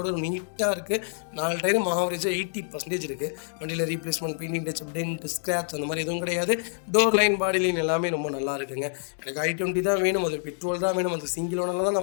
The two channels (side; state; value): right; silent; digital silence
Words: நீட்டாக இருக்குது. 4 டயரும் ஆவரேஜாக 80% இருக்குது. வண்டியில் replacement, painting, touch, dent, scratch அந்த மாதிரி எதுவும் கிடையாது. டோர் லைன், பாடி லைன் எல்லாமே ரொம்ப நல்லா இருக்குங்க. எனக்கு i20 தான் வேணும், அது பெட்ரோல் தான் வேணும், அது சிங்கிள் ஓனரில் தான்